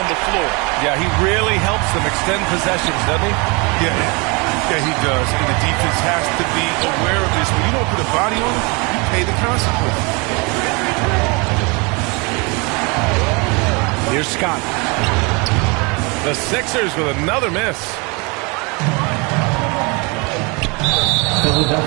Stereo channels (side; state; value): left; quieter; 29.3 dB